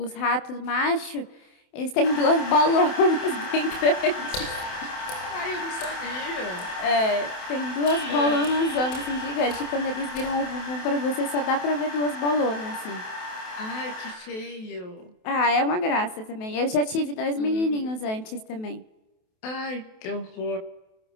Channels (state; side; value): late; right; 28 ms